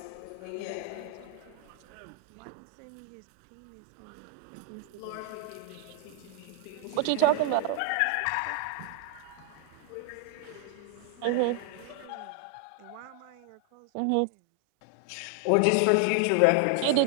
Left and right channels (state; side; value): different; both; correlation 0.01